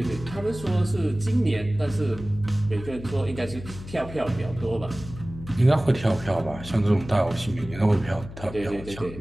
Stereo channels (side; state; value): left; noise; hum, 13 dB below the sound